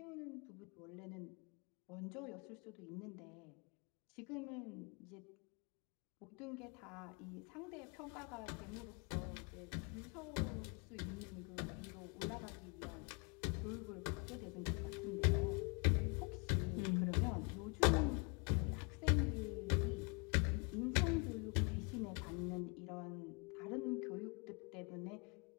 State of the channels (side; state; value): right; quieter; 33.8 dB